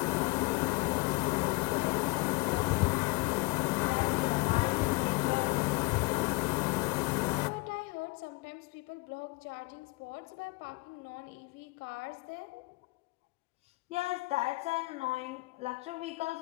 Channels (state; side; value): quieter; right; 24.8 dB